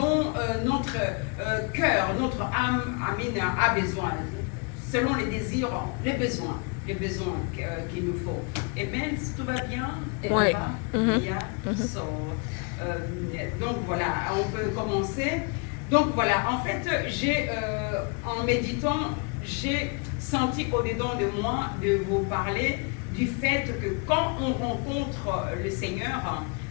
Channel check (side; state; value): right; quieter; 33.6 dB